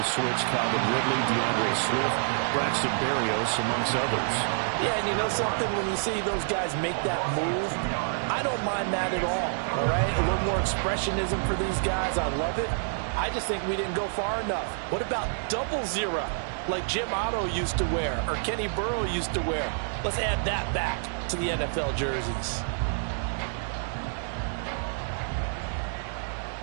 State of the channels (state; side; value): silent; left; digital silence